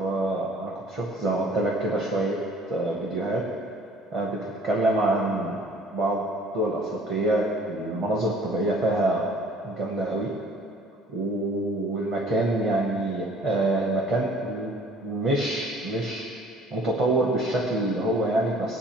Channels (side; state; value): both; normal; correlation 0.54